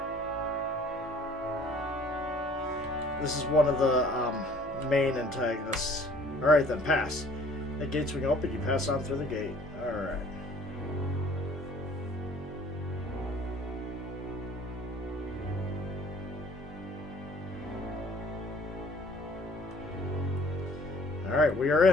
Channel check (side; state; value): both; normal; correlation 0.54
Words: main antagonists. Alright then, pass. The gate swing open, you pass on through the gate. Alright. Alright, we are